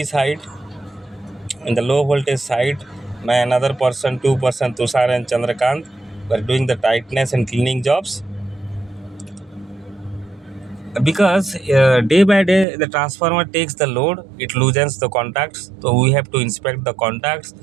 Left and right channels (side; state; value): left; drops out; at 12.7 s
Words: side, in the low voltage side, my another person, two-person, Tushar and Chandrakant, were doing the tightness and cleaning jobs. Because day by day the transformer takes the load, it loosens the contacts, so we have to inspect the contacts.